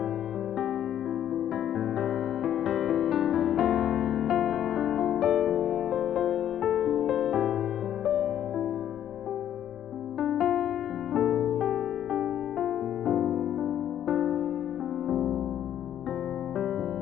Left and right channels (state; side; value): quieter; right; 10.7 dB